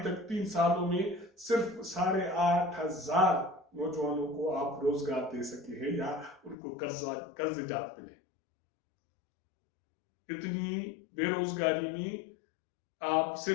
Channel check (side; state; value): right; drops out; at 6.6 s